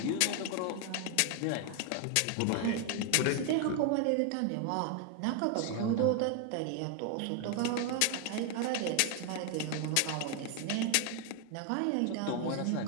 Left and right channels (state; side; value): different; both; correlation 0.00